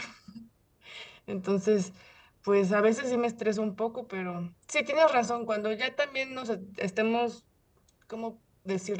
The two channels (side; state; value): both; identical; correlation 1.00